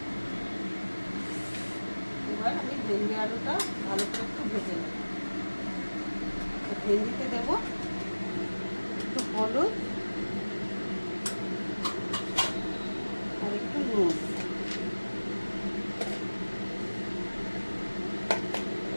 এবার আমি ভেন্ডি আলুটা ভালো করে একটু ভেজে নেব। তো ভেন্ডিতে দেবো একটু হলুদ আর একটু নুন।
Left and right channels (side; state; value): both; inverted; correlation -1.00